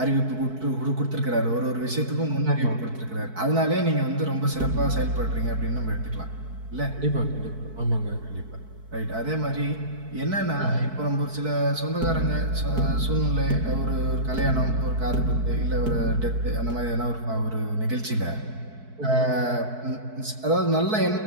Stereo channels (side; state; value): left; late; 4.6 ms